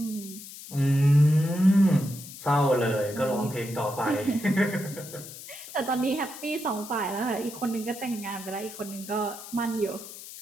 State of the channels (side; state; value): left; noise; hiss, 14 dB below the sound